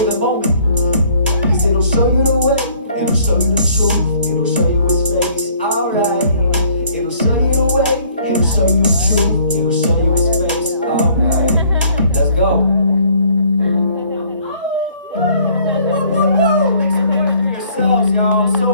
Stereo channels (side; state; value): both; inverted; correlation -0.60